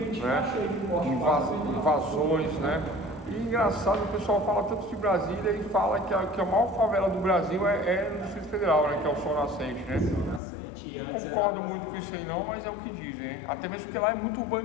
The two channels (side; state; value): right; drops out; at 10.4 s